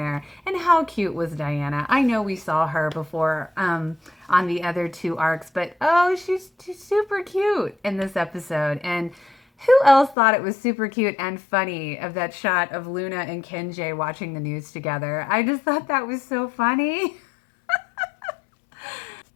And how cute was Diana? I know we saw her before on the other two arcs, but she's super cute in this episode. And who else thought it was super cute and funny of that shot of Luna and Kenji watching the news together? I just thought that was so funny.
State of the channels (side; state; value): right; drops out; at 10.2 s